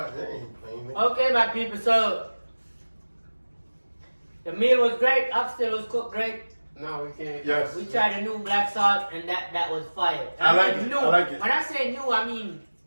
ain't playing. okay, my people. So the meal was great. Oxtail was cooked great. No, we can't. Yes. We tried a new black salt, and that was fire. I like mean it, New. I like it. When I say new, I mean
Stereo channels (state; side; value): inverted; both; correlation -1.00